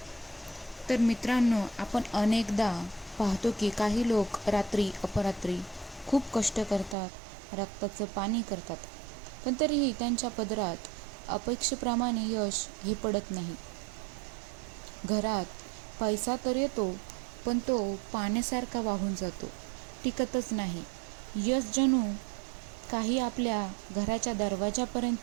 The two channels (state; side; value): drops out; left; at 7.0 s